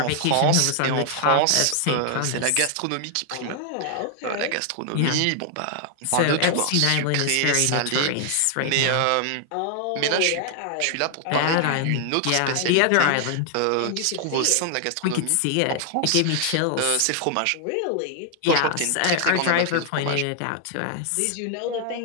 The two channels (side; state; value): both; different; correlation 0.00